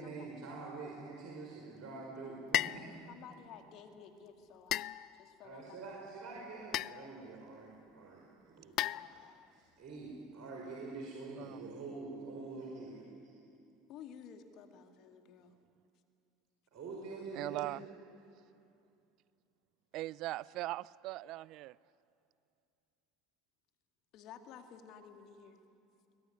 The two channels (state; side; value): normal; both; correlation 0.34